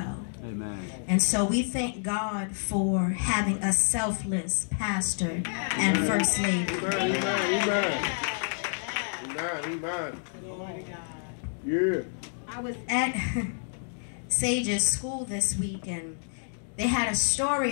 Amen. And so we thank God for having a selfless pastor and first lady. Amen. Yeah. I was at Sage's school this week, and they had a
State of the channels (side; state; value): right; silent; digital silence